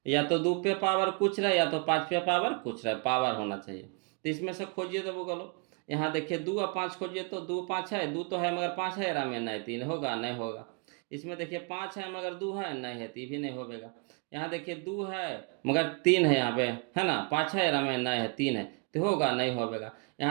या तो 2 पे पावर कुछ रहे या तो 5 पे पावर कुछ रहे, पावर होना चाहिए। तो इसमें से खोजिए तो बोलो, यहाँ देखिए 2 और 5 खोजिए तो 2 5 है, 2 तो है मगर 5 है रामेन नहीं 3 होगा नहीं होगा। इसमें देखिए 5 है मगर 2 है नहीं है, 3 भी नहीं होगा। यहाँ देखिए 2 है मगर 3 है यहाँ पे, है ना, 5 है रामेन नहीं है 3 है, तो होगा नहीं होगा।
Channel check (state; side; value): quieter; left; 34.5 dB